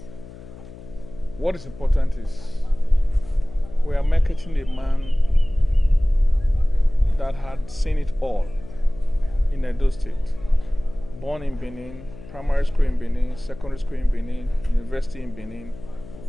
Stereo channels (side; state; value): left; noise; hum, 17 dB below the sound